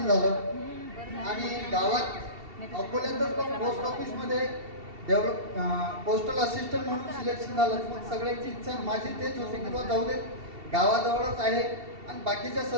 झालं. आणि गावात अकोल्यातच पण पोस्ट ऑफिसमध्ये पोस्टल असिस्टंट म्हणून सिलेक्शन झालं. मग सगळ्यांची इच्छा माझी तेच होती की बा जाऊ दे, गावाजवळच आहे आणि बाकीच्या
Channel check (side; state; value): left; late; 2.7 ms